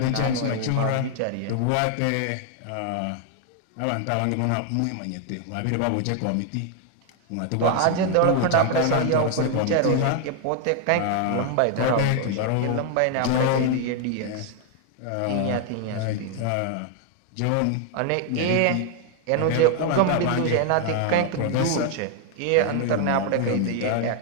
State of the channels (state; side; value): different; both; correlation 0.00